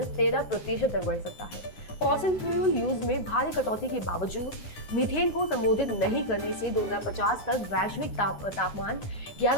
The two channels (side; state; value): right; late; 9.7 ms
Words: 13% तक बढ़ सकता है। फॉसिल फ्यूल यूज में भारी कटौती के बावजूद मीथेन को संबोधित नहीं करने से 2050 तक वैश्विक तापमान